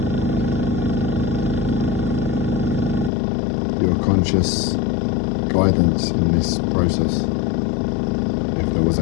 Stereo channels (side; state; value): right; drops out; at 3.1 s